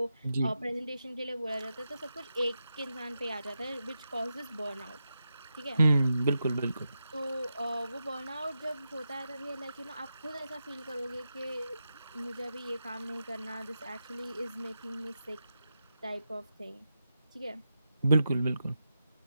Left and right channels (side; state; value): both; inverted; correlation -0.87